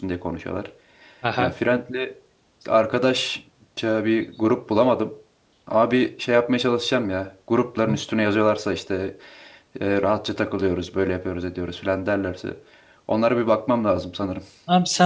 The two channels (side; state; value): both; identical; correlation 1.00